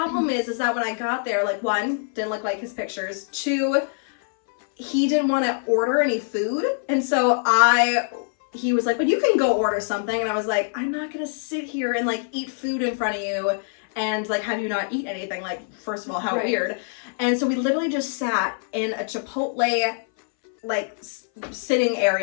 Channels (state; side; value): silent; right; 59 dB below the other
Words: is that when I got there, like one, didn't look like his pictures. Two, he didn't want to order any food, and so he was like, but you can go order something. And I was like, I'm not gonna sit here and like eat food in front of you and like have you not eat anything. Like, first of all, how Right. weird. And so we literally just sat in a Chipotle like sitting